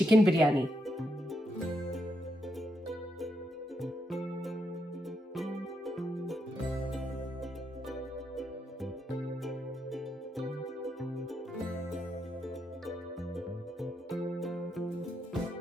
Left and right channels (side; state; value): both; normal; correlation 0.81